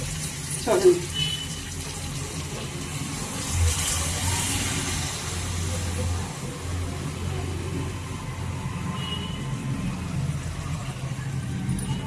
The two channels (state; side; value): identical; both; correlation 1.00